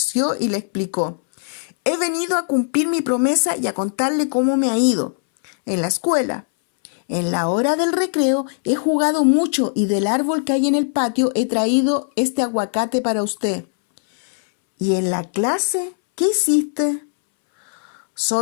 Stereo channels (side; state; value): right; silent; 64 dB below the other